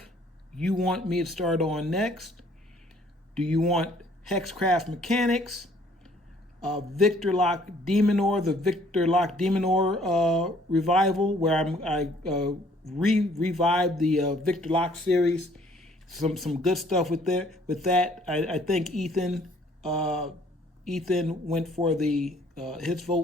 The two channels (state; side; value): normal; both; correlation 0.60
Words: you want me to start on next. Do you want Hexcraft Mechanics, Victor Locke Demonor, the Victor Locke Demonor revival, where I revived the Victor Locke series? Some good stuff with that. I think Ethan went for his